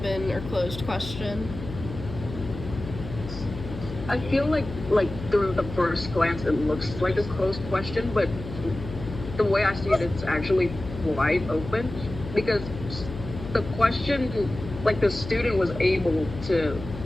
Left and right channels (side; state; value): left; noise; hum, 10 dB below the sound